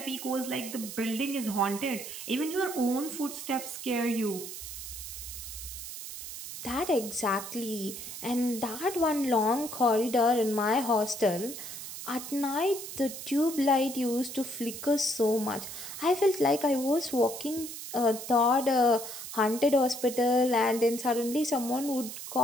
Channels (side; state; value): right; noise; hiss, 9 dB below the sound